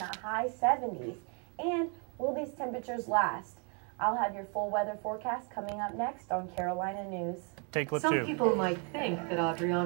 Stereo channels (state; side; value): quieter; left; 37.6 dB